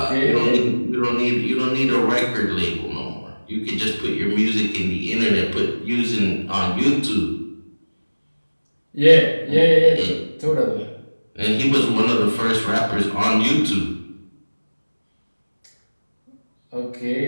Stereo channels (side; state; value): both; inverted; correlation -1.00